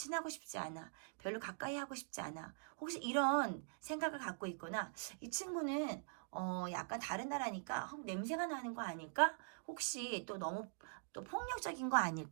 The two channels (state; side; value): silent; left; digital silence